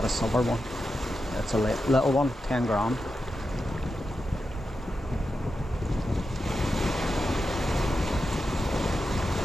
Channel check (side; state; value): both; normal; correlation 0.89